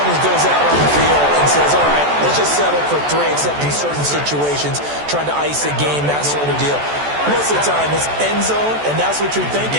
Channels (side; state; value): left; late; 14 ms